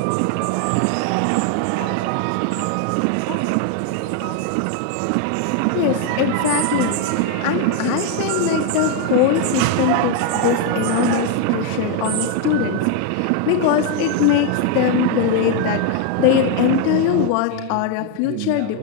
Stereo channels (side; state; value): both; different; correlation 0.01